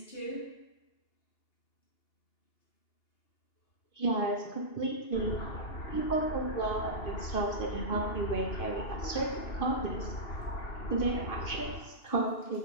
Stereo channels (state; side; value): late; right; 2.5 ms